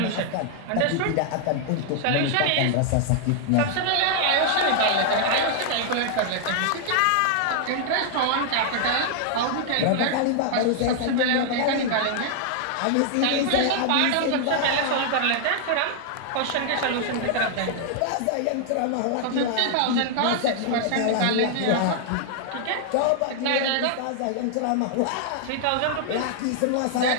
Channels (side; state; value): both; different; correlation 0.00